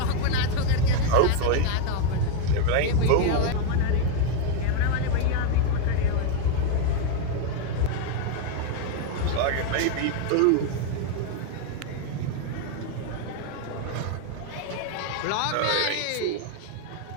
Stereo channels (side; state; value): both; different; correlation 0.01